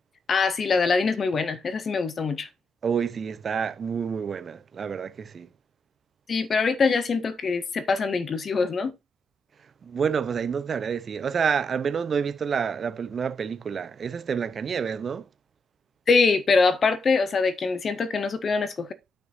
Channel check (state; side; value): normal; both; correlation 0.81